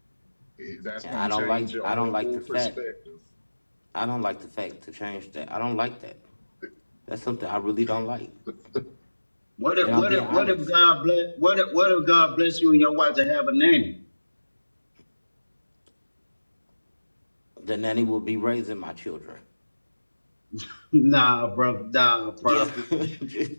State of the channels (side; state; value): both; inverted; correlation -1.00